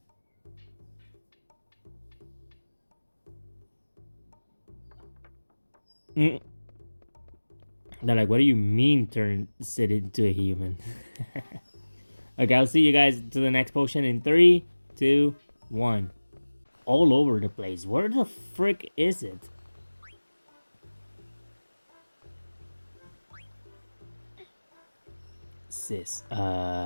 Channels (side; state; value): both; inverted; correlation -1.00